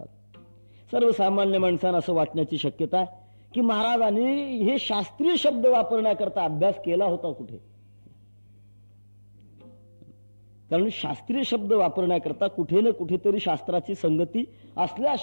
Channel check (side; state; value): both; inverted; correlation -1.00